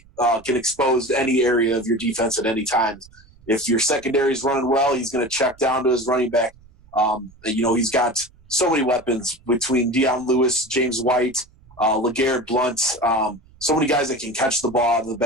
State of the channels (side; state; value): right; noise; rumble, 26 dB below the sound